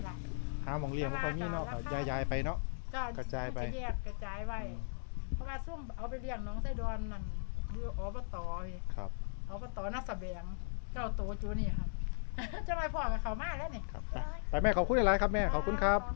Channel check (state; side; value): silent; right; digital silence